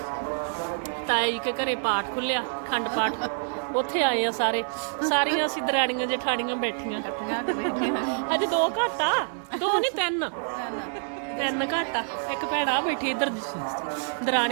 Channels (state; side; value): silent; left; 60 dB below the other